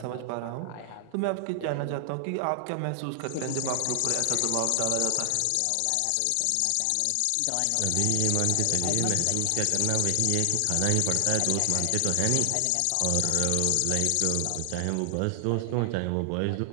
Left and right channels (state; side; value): different; both; correlation 0.00